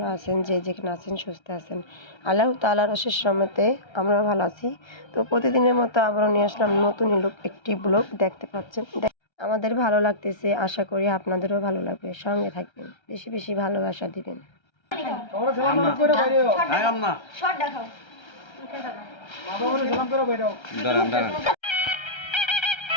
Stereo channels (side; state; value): right; late; 1.3 ms